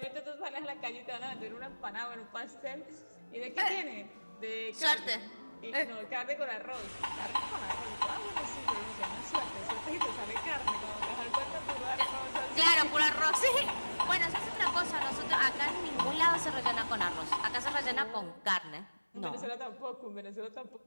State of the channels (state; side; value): inverted; both; correlation -1.00